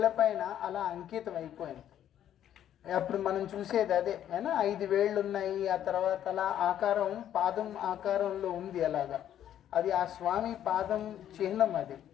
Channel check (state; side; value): quieter; right; 10.8 dB